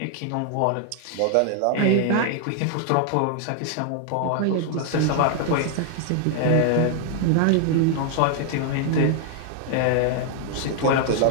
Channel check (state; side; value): different; both; correlation 0.00